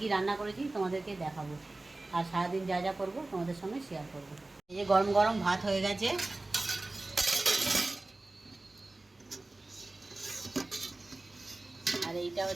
কী রান্না করেছি তোমাদেরকে দেখাবো, আর সারাদিন যা যা করবো তোমাদের সঙ্গে শেয়ার করবো। এই যে গরম গরম ভাত হয়ে গেছে, আর এইটা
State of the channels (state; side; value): quieter; left; 3.0 dB